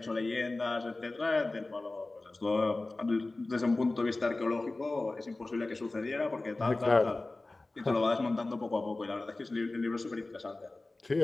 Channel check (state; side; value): quieter; right; 3.1 dB